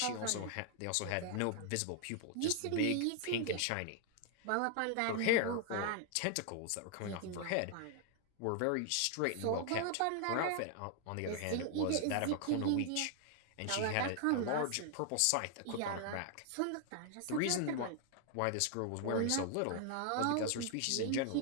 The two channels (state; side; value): different; both; correlation 0.00